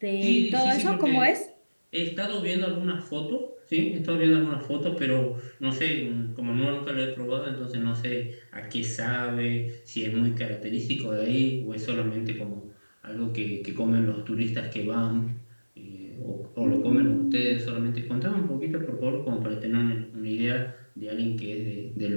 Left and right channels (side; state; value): both; inverted; correlation -1.00